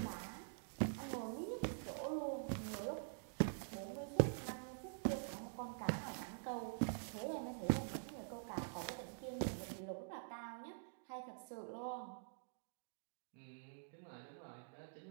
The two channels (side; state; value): left; silent; digital silence